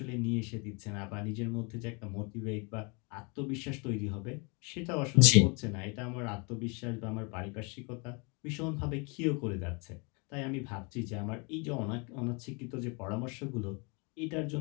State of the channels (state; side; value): quieter; right; 31.8 dB